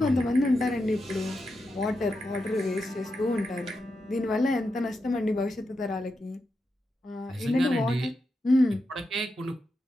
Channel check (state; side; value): normal; both; correlation 0.87